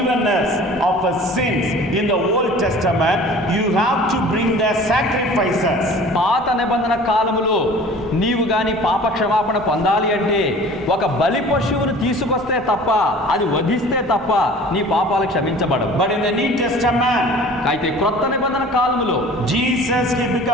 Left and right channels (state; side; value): normal; both; correlation 0.45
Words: of sins in the Old Testament, you have to bring the sacrifices. పాత నిబంధన కాలములో నీవు గాని పాప క్షమాపణ పొందాలి అంటే ఒక బలి పశువును తీసుకొస్తే తప్ప, అది వధిస్తే తప్ప నీ పాపాలు క్షమించబడవు. But in the New Testament, అయితే క్రొత్త నిబంధన కాలములో Jesus, he